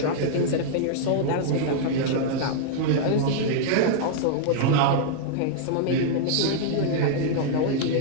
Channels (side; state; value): both; different; correlation -0.01